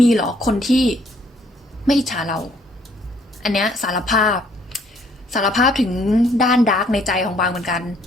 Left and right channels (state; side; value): normal; both; correlation 0.64